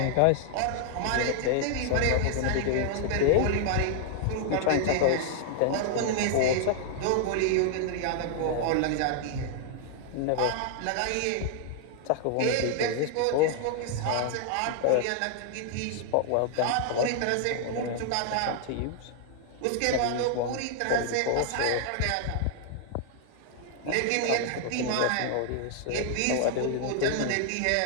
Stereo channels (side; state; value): both; different; correlation 0.00